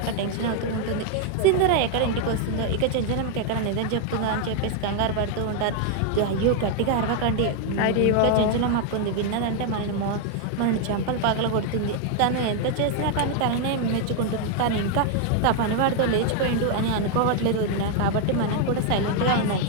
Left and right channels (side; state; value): both; different; correlation 0.00